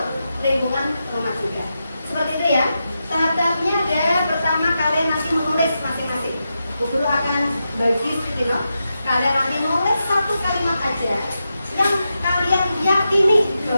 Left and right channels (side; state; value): both; inverted; correlation -0.88